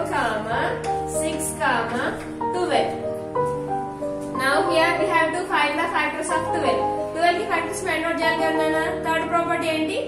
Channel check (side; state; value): both; identical; correlation 1.00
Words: 6 12. Now here we have to find the factors of 12. 12 की factors find out చేయాలి కదా. Third property ఏంటి?